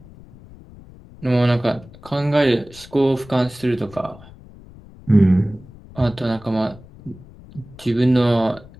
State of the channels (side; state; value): left; noise; rumble, 21 dB below the sound